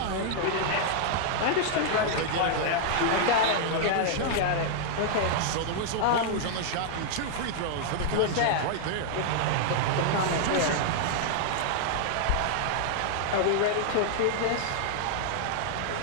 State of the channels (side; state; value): both; different; correlation -0.01